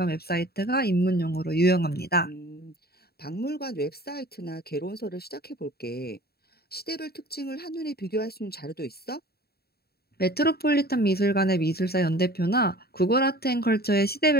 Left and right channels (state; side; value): late; right; 0.46 ms